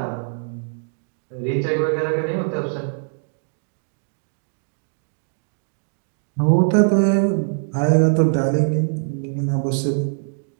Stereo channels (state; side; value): silent; left; 63 dB below the other